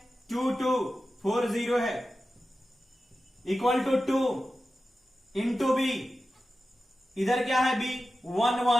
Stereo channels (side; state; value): both; normal; correlation 0.93